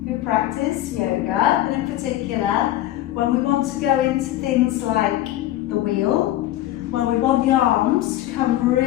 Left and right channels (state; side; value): quieter; right; 14.2 dB